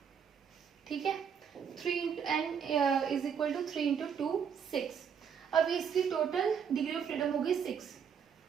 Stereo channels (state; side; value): quieter; left; 7.3 dB